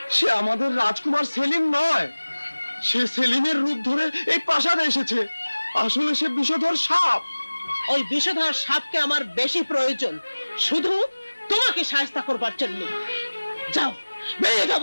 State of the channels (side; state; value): both; inverted; correlation -1.00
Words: সে আমাদের রাজকুমার সেলিম নয়, সে সেলিমের রূপ ধরে এই প্রাসাদে এসেছে। আসলে সে বিষধর সাপ। ওই বিষধর সাপকে আমার বেশি প্রয়োজন, শুধু তোমাকে সাহায্য করবার জন্য। যাও, বেরিয়ে যাও